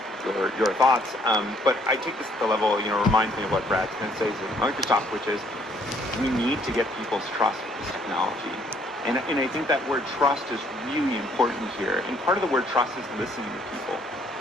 your thoughts, but I take this at the level, reminds me of what Brad Smith says at Microsoft, which is we need to get people's trust with this technology. And I think that word trust is really important here. And part of the word trust is listening to people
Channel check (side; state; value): both; normal; correlation 0.64